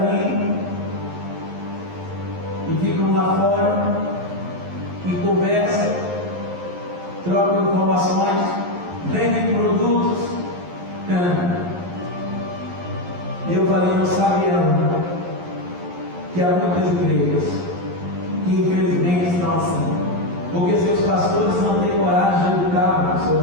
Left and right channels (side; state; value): left; late; 11 ms